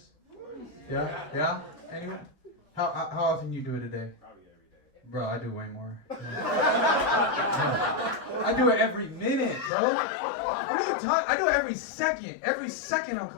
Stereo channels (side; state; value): right; drops out; at 9.7 s